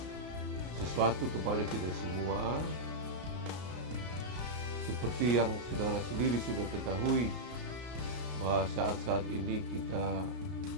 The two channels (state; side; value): late; left; 33 ms